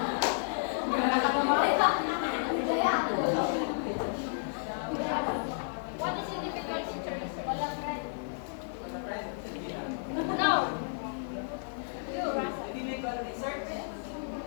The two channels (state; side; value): silent; right; 56 dB below the other